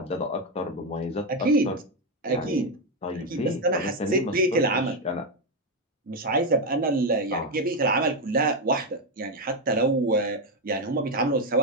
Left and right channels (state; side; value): normal; both; correlation 0.06